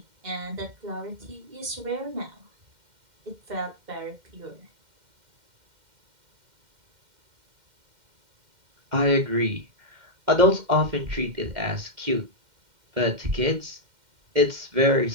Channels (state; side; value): late; left; 2.1 ms